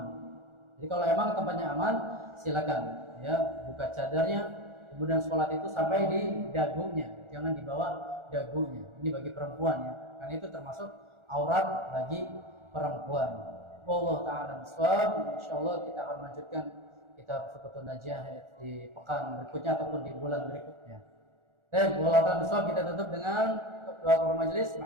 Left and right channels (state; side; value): late; left; 1.4 ms